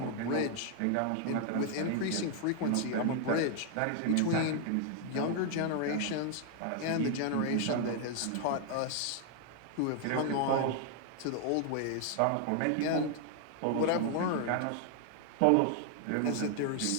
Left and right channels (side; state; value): both; different; correlation 0.00